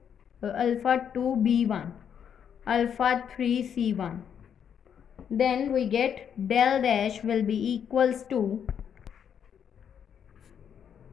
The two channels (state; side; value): quieter; right; 8.2 dB